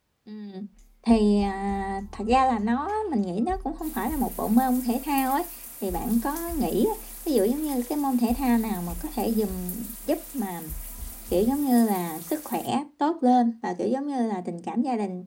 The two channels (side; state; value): both; identical; correlation 1.00